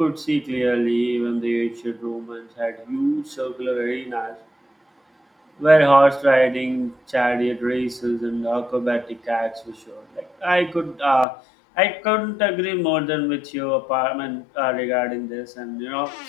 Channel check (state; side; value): drops out; right; at 11.2 s